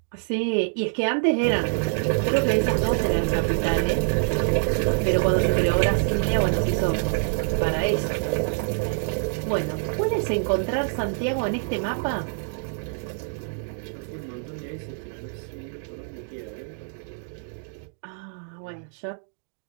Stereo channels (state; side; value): silent; left; 61 dB below the other